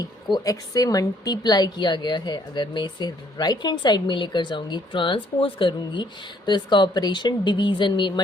को x से मल्टीप्लाई किया गया है। अगर मैं इसे राइट हैंड साइड में लेकर जाऊंगी, ट्रांसपोज करूंगी, तो इसका ऑपरेशन डिवीज़न में,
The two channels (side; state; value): both; normal; correlation 0.65